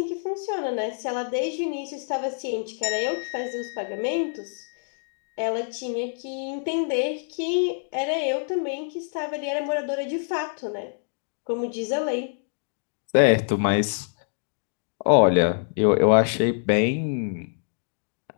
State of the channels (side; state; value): right; silent; digital silence